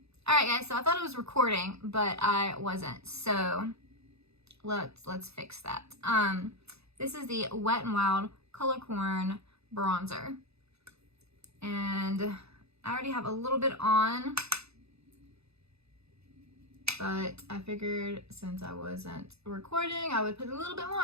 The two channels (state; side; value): late; left; 0.79 ms